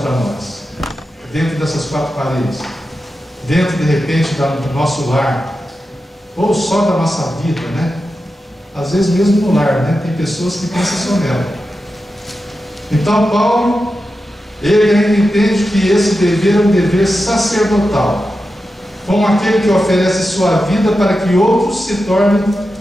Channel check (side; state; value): both; normal; correlation 0.91